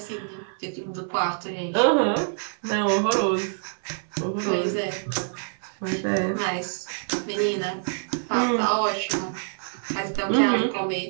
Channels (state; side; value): silent; left; 59 dB below the other